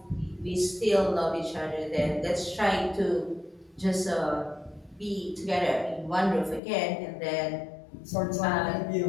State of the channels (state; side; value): drops out; right; at 6.6 s